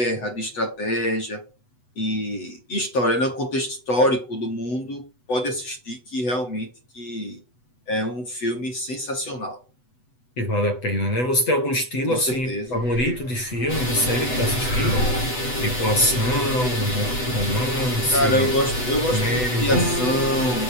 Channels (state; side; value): late; right; 8.0 ms